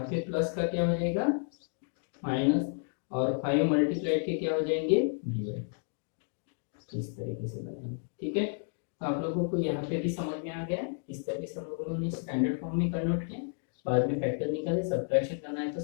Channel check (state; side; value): silent; right; 57 dB below the other